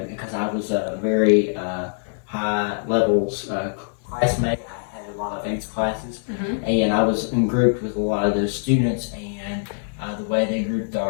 because I was a very high levels classmate. I had a lot of 8th classes, and I was in group with a lot of those students. And the way they grouped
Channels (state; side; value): silent; right; digital silence